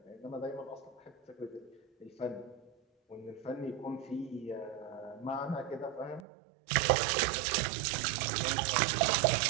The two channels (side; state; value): left; drops out; at 6.2 s